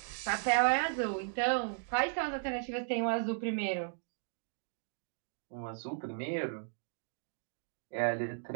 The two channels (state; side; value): silent; left; digital silence